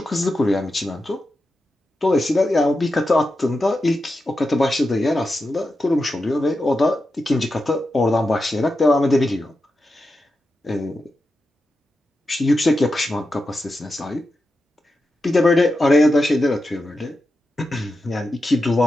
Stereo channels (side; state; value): both; normal; correlation 0.89